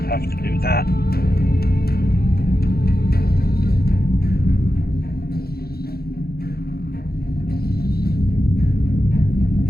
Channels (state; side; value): late; right; 0.45 ms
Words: have to do that?